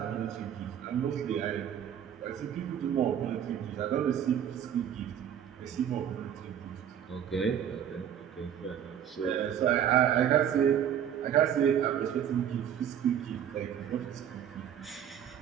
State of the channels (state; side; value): quieter; left; 9.4 dB